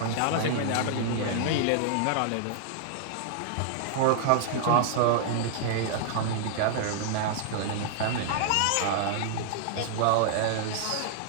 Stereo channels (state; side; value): different; both; correlation -0.01